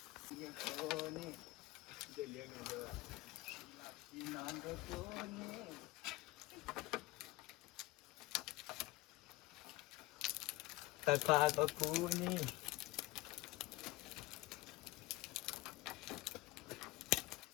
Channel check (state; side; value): quieter; right; 20.0 dB